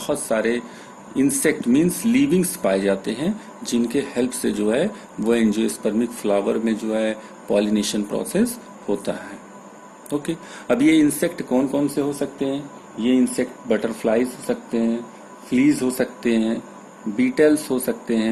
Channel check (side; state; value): both; identical; correlation 1.00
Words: सारे इंसेक्ट मींस लिविंग्स पाए जाते हैं जिनके हेल्प से जो है वो एंजियोस्पर्मिक फ्लावर में जो है पॉलिनेशन प्रोसेस होता है। ओके। अब ये इंसेक्ट कौन कौन से हो सकते हैं? ये इंसेक्ट बटरफ्लाईज हो सकते हैं, फ्लीज हो सकते हैं, बीटल्स हो सकते